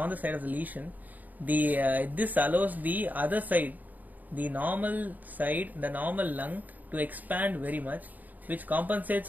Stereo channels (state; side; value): late; left; 0.082 ms